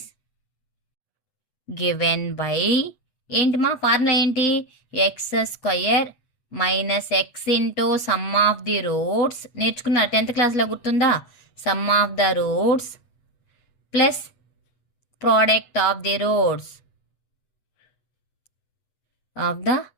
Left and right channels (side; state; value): right; late; 8.2 ms